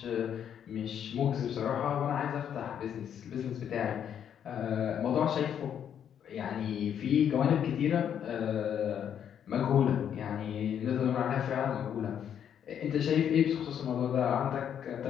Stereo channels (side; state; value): right; quieter; 8.9 dB